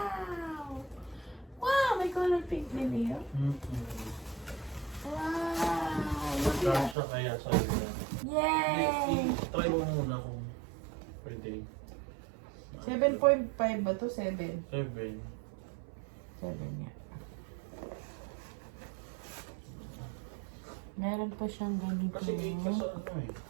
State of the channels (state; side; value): drops out; left; at 7.0 s